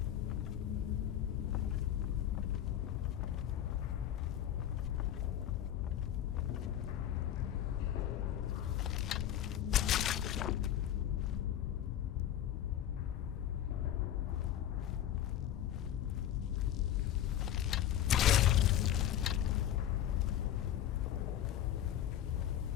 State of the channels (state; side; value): quieter; right; 11.1 dB